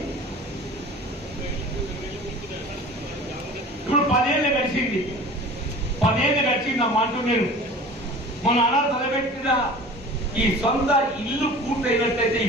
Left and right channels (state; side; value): normal; both; correlation 0.41